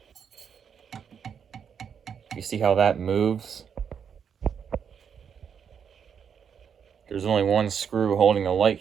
you see how that moves? There's only one screw holding the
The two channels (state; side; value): quieter; left; 7.4 dB